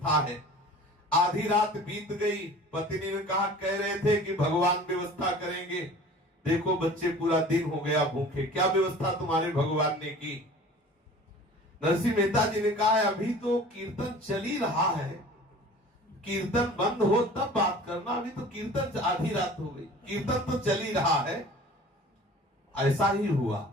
है। आधी रात बीत गई, पत्नी ने कहा कह रहे थे कि भगवान व्यवस्था करेंगे, देखो बच्चे पूरा दिन हो गया भूखे, क्या व्यवस्था तुम्हारे भगवान ने की? नरसिंह मेहता जी ने कहा अभी तो कीर्तन चल ही रहा है, कीर्तन बंद हो तब बात करना, अभी तो कीर्तन आधी रात हो गई, कीर्तन तो चल ही रहा है। ऐसा ही हुआ,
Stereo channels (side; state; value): both; normal; correlation 0.44